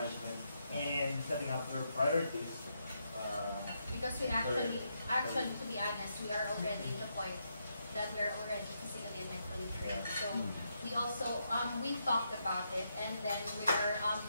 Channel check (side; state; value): both; inverted; correlation -0.80